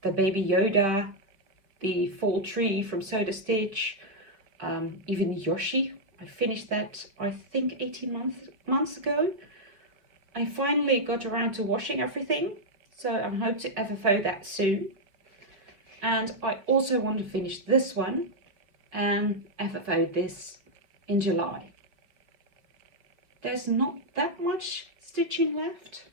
the Baby Yoda, the Fall Tree from Soda Stitch, even the Yoshi. I finished that, I think, 18 months ago. I finally got around to washing everything, so I hope to FFO that soon. And I also want to finish this one and FFO this in July. There's not that much stitching left.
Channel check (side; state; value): left; late; 4.9 ms